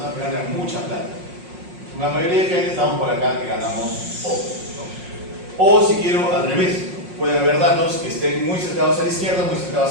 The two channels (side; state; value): left; late; 5.5 ms